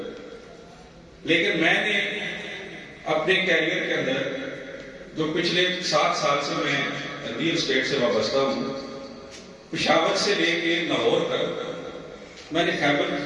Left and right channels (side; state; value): both; identical; correlation 1.00